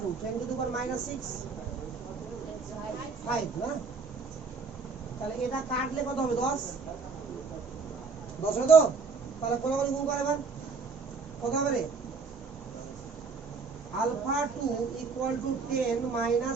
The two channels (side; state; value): left; quieter; 4.8 dB